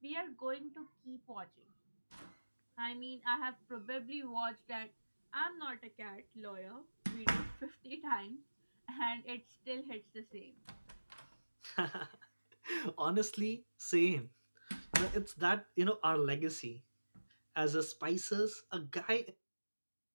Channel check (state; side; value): inverted; both; correlation -1.00